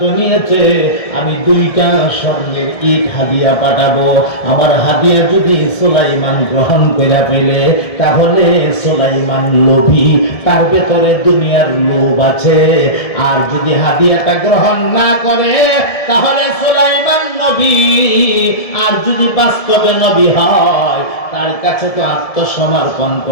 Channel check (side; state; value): right; late; 1.7 ms